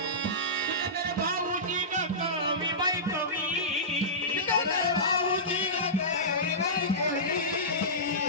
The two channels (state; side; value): normal; both; correlation -0.18